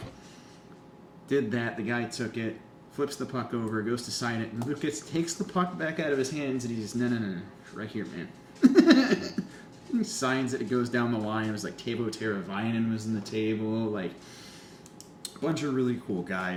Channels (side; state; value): both; identical; correlation 1.00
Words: Did that. The guy took it, flips the puck over, goes to sign it, and Lucas takes the puck back out of his hands, and he's no, right here, man. signs that it goes down the line. It was like Tavo Teravainen was in the table. Like, a bunch of really cool